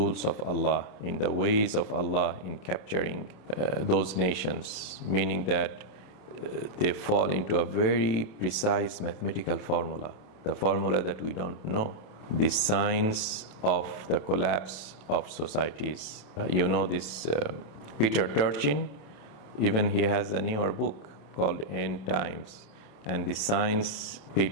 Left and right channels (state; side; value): late; right; 27 ms